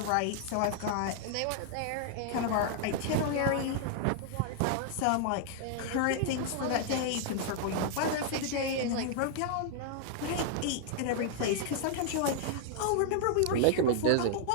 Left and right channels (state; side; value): different; both; correlation -0.01